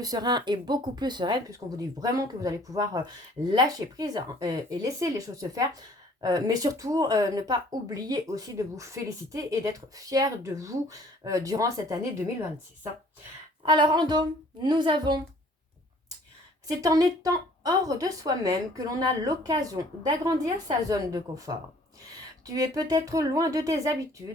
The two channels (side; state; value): both; normal; correlation 0.55